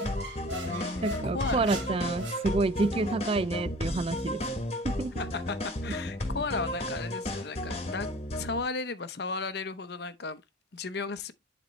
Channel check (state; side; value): normal; both; correlation 0.43